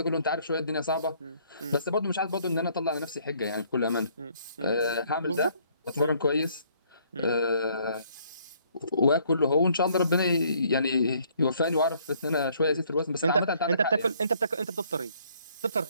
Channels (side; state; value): both; inverted; correlation -0.64